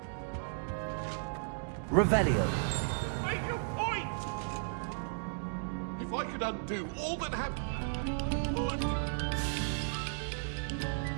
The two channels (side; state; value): left; silent; digital silence